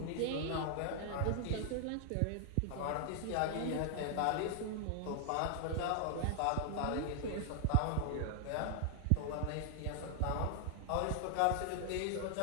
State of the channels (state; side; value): different; both; correlation 0.00